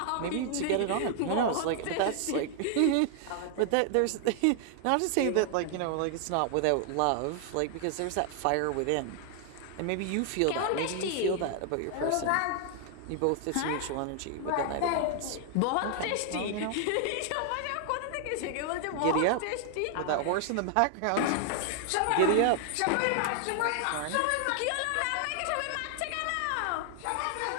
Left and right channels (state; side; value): different; both; correlation 0.00